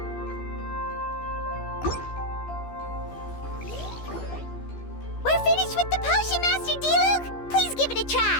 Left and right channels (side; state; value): right; late; 14 ms